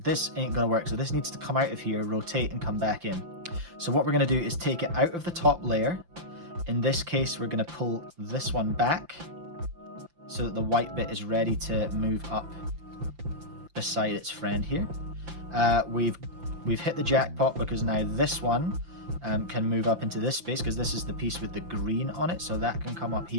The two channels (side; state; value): left; late; 5.8 ms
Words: this ain't gonna work, so this needs to come out of here, rotate, and come back in. So what we're gonna do is take it out of the top layer. In this case, we're going to pull this one back so that the white bit is ready to move up beside its friend here. We've hit the jackpot because now this one can move up into this space because this is the piece with the green on it, so that can come up